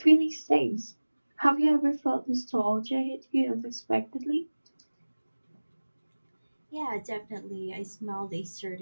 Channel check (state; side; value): inverted; both; correlation -1.00